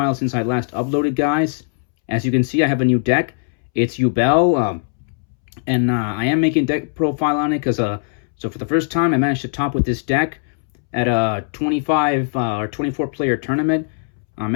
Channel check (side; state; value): right; silent; 66 dB below the other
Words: since I last uploaded, guys. As you can see, I have a new deck. It's Yubel, and I am making deck profile on it because so for the first time I managed to top with this deck at a 25 or 24 player tournament. I